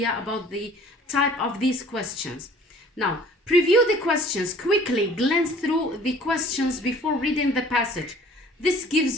about the type of these questions. Now, preview the questions quickly, glance through the questions before reading the passage. This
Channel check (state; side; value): normal; both; correlation 0.51